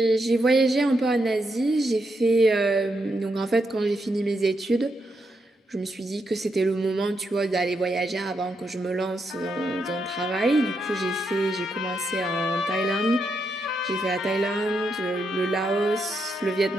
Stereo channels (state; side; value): normal; both; correlation 0.81